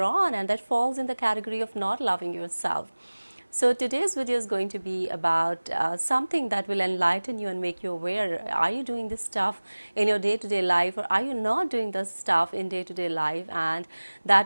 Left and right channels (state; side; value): inverted; both; correlation -1.00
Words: on, and that falls in the category of not loving yourself. So today's video is going to be about something that will enlighten you and make you aware. Are you doing this stuff in your day-to-day life, or are you not doing this stuff in day-to-day life? And